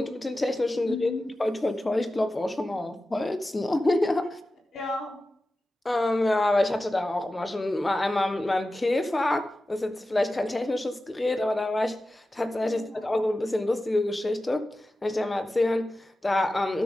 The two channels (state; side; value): normal; both; correlation 0.94